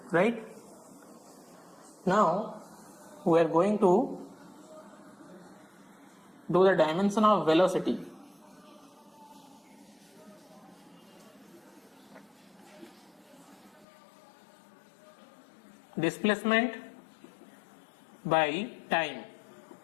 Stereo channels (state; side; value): drops out; right; at 13.9 s